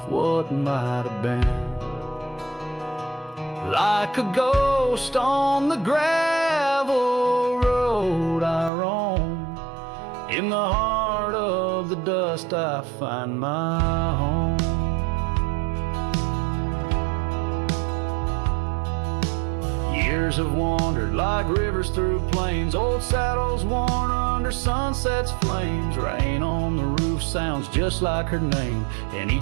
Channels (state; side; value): drops out; left; at 8.7 s